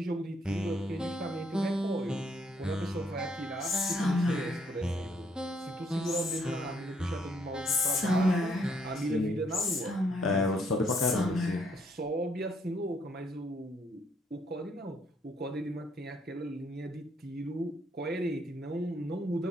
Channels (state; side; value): normal; both; correlation 0.69